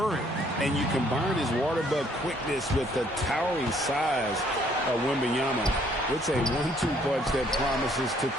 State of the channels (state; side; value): normal; both; correlation 0.64